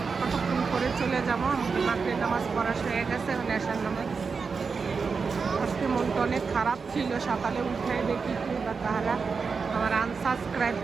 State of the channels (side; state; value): left; quieter; 5.1 dB